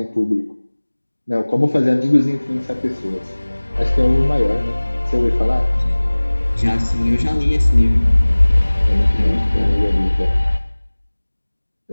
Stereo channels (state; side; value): inverted; both; correlation -1.00